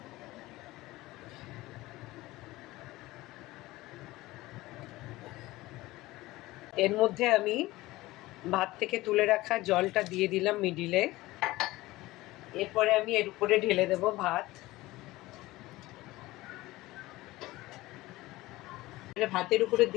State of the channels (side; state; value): right; quieter; 18.7 dB